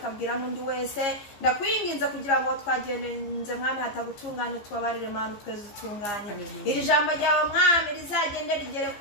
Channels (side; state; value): right; late; 15 ms